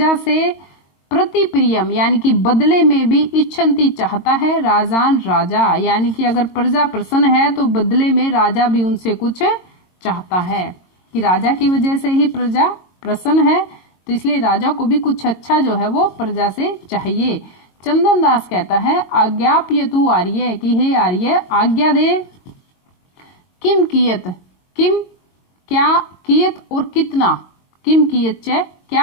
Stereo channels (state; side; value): late; right; 22 ms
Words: से। प्रति प्रियम, यानी कि बदले में भी, इच्छन्ति चाहता है, राजान राजा, यानी कि अगर प्रजा प्रसन्न है तो बदले में राजा भी उनसे कुछ चाहता है, कि राजा की वजह से ही प्रजा प्रसन्न है, तो इसलिए राजा को भी कुछ अच्छा जो है वो प्रजा से चाहिए। चंदन दास कहता है आज्ञाप्य तू आर्य, कि हे आर्य आज्ञा दे। किम कियत, किम क्या, कियत और कितना, किम कियत च, क्या